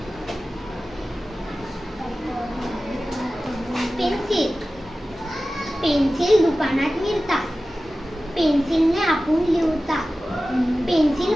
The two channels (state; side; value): normal; both; correlation 0.95